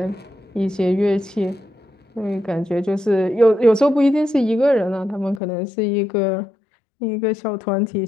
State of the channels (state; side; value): drops out; right; at 5.4 s